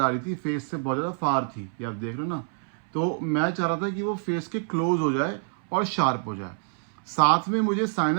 आ रही थी, फेस से बहुत ज़्यादा फार थी, ये आप देख रहे हो ना। तो मैं चाह रहा था कि वो फेस के क्लोज हो जाए और शार्प हो जाए। साथ में मुझे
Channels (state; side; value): silent; left; 60 dB below the other